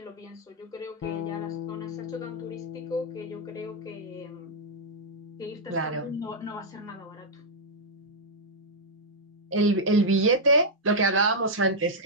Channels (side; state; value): both; normal; correlation -0.06